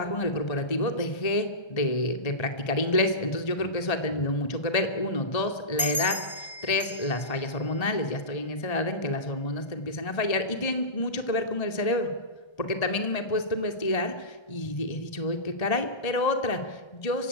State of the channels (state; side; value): late; right; 1.3 ms